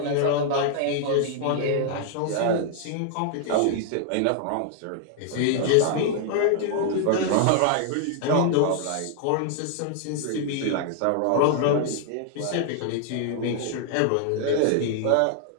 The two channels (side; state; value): both; different; correlation 0.00